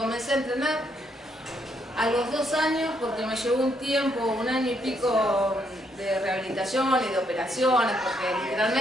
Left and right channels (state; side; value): normal; both; correlation 0.74